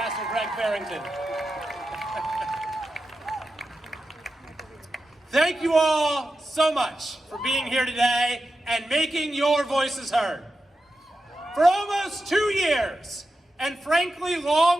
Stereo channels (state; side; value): normal; both; correlation 0.90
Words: Greg Farrington. Thank you all so much for being here today and making your voices heard. For almost 2 years, and frankly